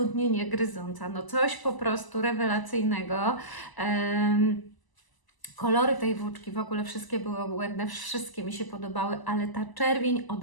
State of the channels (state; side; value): late; right; 1.0 ms